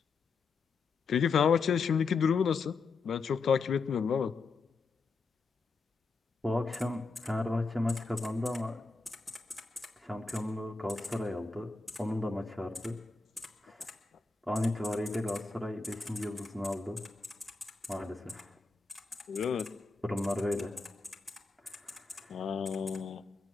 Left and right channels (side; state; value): right; quieter; 4.3 dB